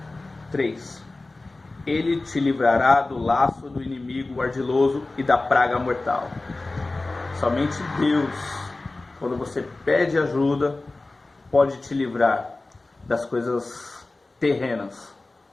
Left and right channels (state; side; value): quieter; right; 3.1 dB